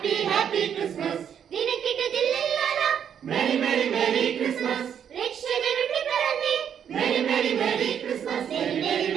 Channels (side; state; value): left; quieter; 8.5 dB